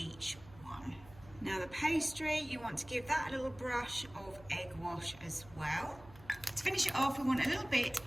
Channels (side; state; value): right; noise; hum, 21 dB below the sound